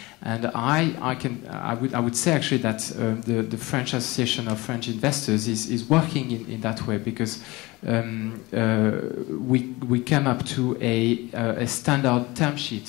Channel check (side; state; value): right; quieter; 22.0 dB